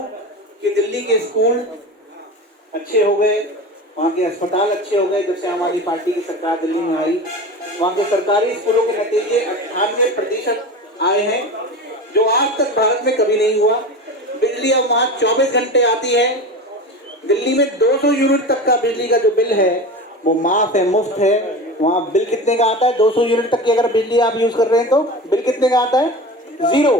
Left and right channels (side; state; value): both; normal; correlation 0.29